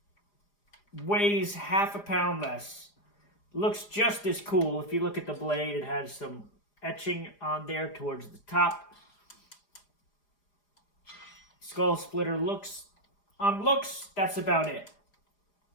weighs half a pound less. Looks just as cool. If you look at the blade, it has some etching on there towards the top. Skull Splitter looks, that's about it.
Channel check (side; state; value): right; late; 4.9 ms